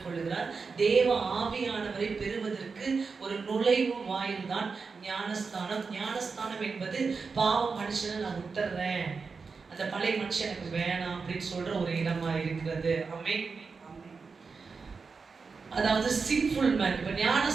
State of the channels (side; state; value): left; quieter; 4.9 dB